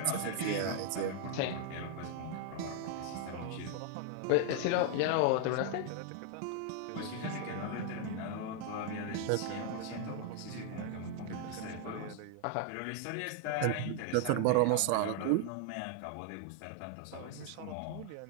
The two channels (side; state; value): both; different; correlation 0.00